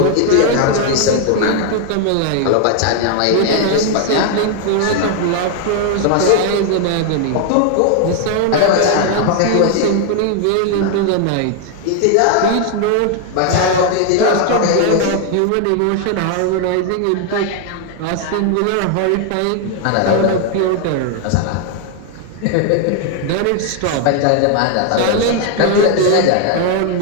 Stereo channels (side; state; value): both; different; correlation 0.00